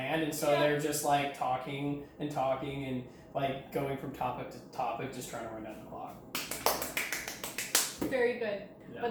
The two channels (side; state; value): both; identical; correlation 1.00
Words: and so they're just like talking and like going from topic to topic, just trying to run down the clock. Very good. Yeah.